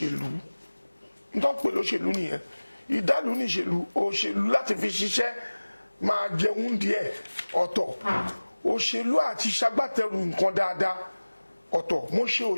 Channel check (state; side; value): inverted; both; correlation -1.00